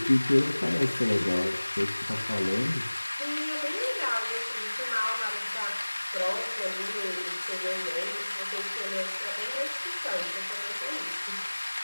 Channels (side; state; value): both; inverted; correlation -1.00